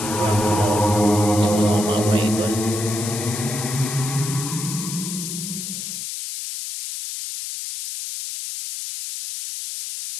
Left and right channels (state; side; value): noise; left; hiss, 6 dB below the sound